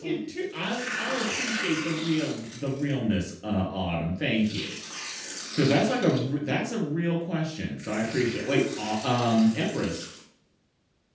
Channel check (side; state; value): both; identical; correlation 1.00